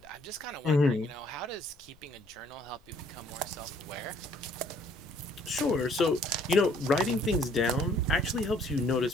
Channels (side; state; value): left; noise; rumble, 28 dB below the sound